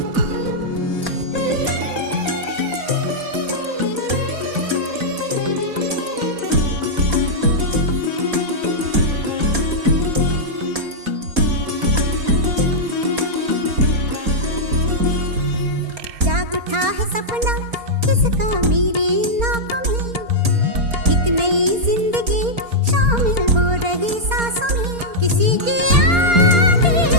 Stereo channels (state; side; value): late; left; 4.3 ms